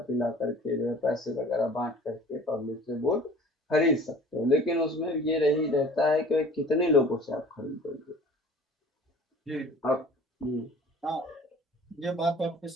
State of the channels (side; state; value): both; normal; correlation 0.47